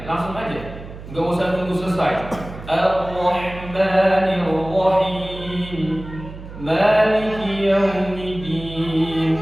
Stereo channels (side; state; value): right; noise; hum, 14 dB below the sound